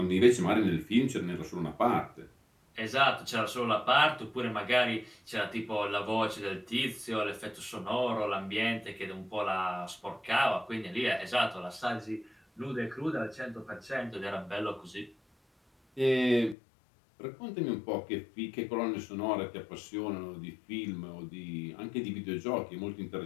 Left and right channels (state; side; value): drops out; right; at 16.6 s